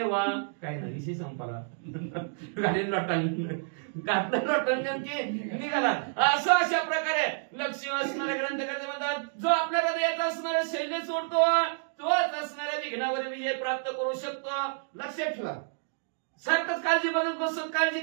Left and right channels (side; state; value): left; silent; digital silence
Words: वा काय नाही विषय संपाला गाडी लोटन नेमकी निघाला. असं अशा प्रकारे लक्ष्मी असणाऱ्या ग्रंथकर्ते म्हणतात, जो आपल्या हृदयात असणाऱ्या शैल्य सोडतो तोच असणाऱ्या विघ्नावर विजय प्राप्त करू शकतो. लक्षात ठेवा, सारखंच काळजी बघत बसत, काळजी